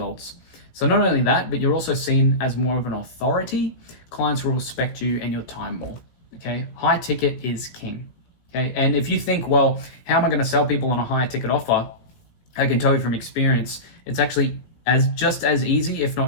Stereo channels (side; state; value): right; late; 17 ms